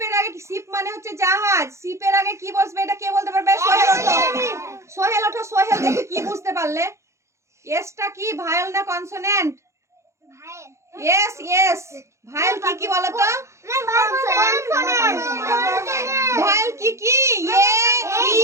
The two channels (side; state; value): left; late; 0.14 ms